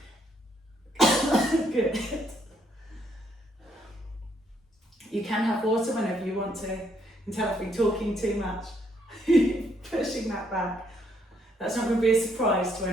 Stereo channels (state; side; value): normal; both; correlation 0.71